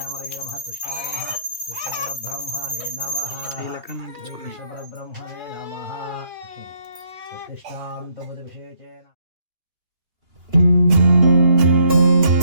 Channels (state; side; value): late; left; 2.9 ms